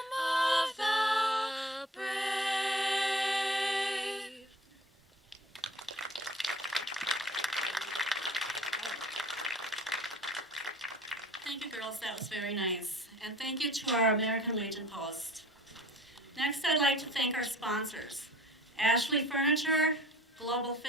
of the brave? Thank you, girls. That was very nice. And thank you to our American Legion Post. Next, I'd like to thank our sponsors: Ashley Furniture, Global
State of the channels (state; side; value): normal; both; correlation 0.46